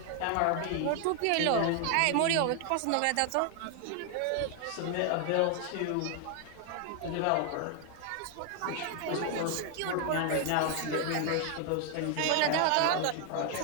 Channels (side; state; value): both; different; correlation 0.00